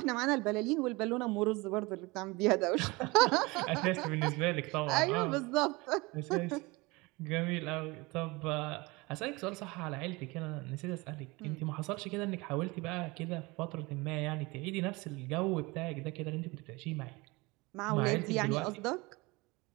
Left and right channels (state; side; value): quieter; left; 24.1 dB